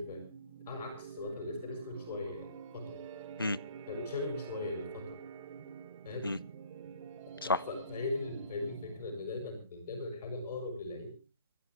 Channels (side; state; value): both; inverted; correlation -0.56